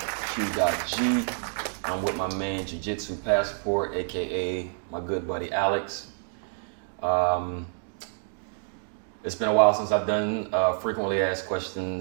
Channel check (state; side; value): silent; left; digital silence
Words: Q.G. I'm with my man JiuJitsu Passport, aka my good buddy Alex. It's been a while since I've done frequently asked